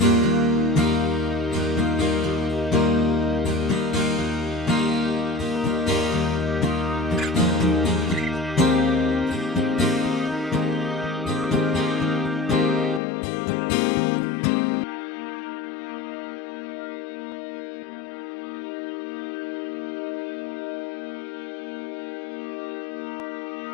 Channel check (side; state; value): right; drops out; at 13.0 s